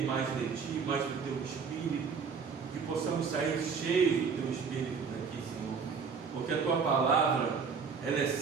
mais de Ti, mais do Teu Espírito, que possamos sair cheios do Teu Espírito daqui, Senhor, porque a Tua palavra, ela é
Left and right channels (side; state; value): left; quieter; 5.8 dB